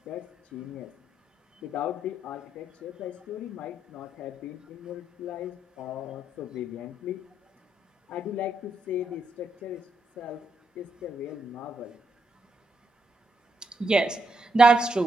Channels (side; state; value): both; normal; correlation 0.79